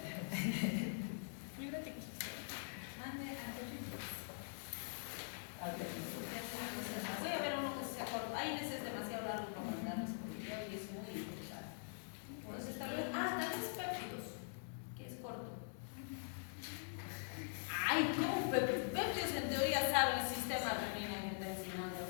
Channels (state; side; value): silent; right; digital silence